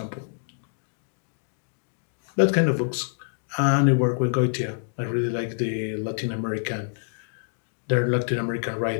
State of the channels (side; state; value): right; silent; digital silence